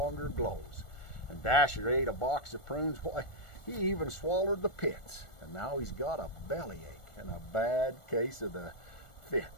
glows. And Dasher ate a box of prunes. Why, he even swallowed the pits. And now he's got a bellyache and a bad case of the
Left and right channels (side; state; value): right; late; 1.4 ms